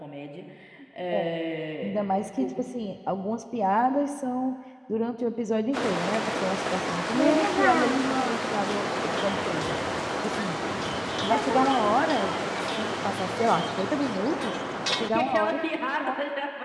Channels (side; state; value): both; identical; correlation 1.00